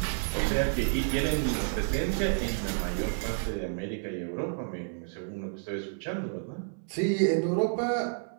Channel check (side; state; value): left; silent; 58 dB below the other